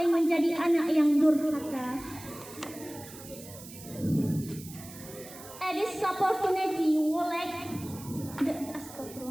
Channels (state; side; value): noise; right; hiss, 16 dB below the sound